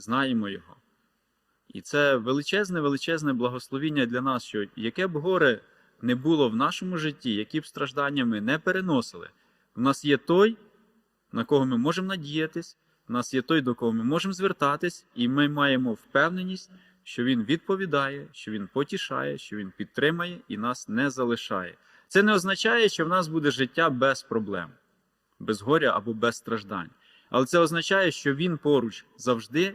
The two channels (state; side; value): identical; both; correlation 1.00